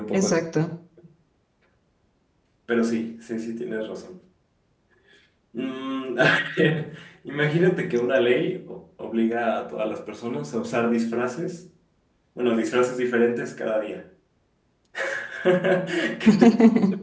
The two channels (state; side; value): identical; both; correlation 1.00